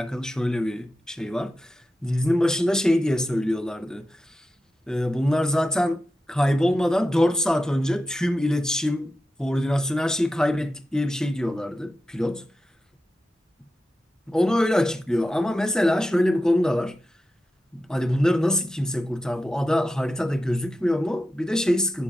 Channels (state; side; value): normal; both; correlation 0.91